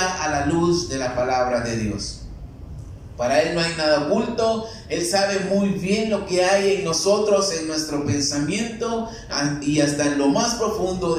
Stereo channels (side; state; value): both; identical; correlation 1.00